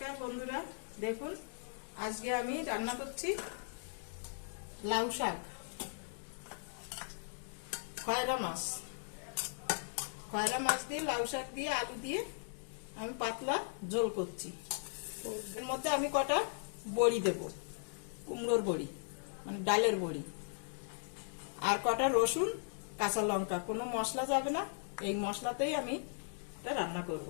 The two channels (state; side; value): silent; right; digital silence